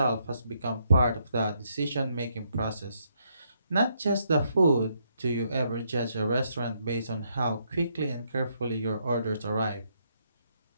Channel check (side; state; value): both; inverted; correlation -0.75